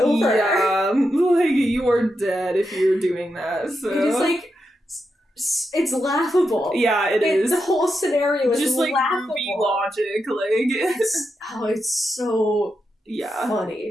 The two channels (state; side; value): normal; both; correlation 0.86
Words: Yeah, like, you are dead if you're doing that, so... It is, like... It's laughable. Yeah, it is. The whole scenario is just, like, laughable. movie logic, like... it's so...